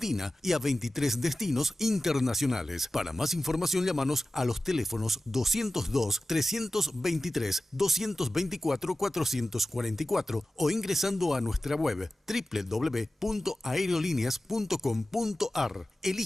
y a 23 destinos internacionales. Para más información, llámanos a los teléfonos 202-323-224-444 o ingresando a nuestra web www.aerolíneas.com.ar.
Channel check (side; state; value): both; normal; correlation 0.96